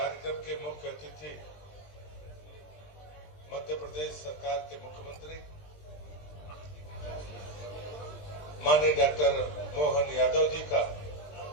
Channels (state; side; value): late; right; 20 ms